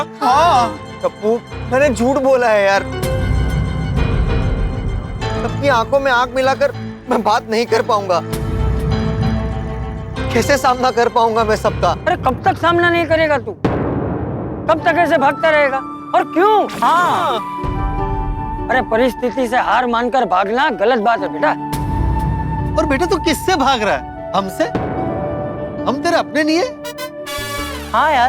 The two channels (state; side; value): identical; both; correlation 1.00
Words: हाँ टप्पू, मैंने झूठ बोला है यार। सबकी आंखों में आंख मिलाकर मैं बात नहीं कर पाऊंगा। कैसे सामना कर पाऊंगा मैं सबका? अरे कब तक सामना नहीं करेगा तू? कब तक ऐसे भागता रहेगा? और क्यों? हाँ, अरे परिस्थिति से हार मानकर भागना गलत बात है बेटा। और बेटा तू किससे भाग रहा है? हमसे? हम तेरे अपने नहीं है? हाँ